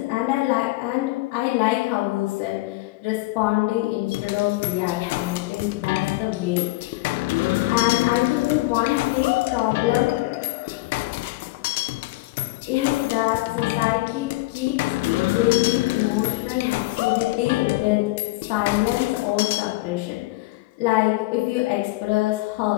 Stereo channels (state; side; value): quieter; right; 20.5 dB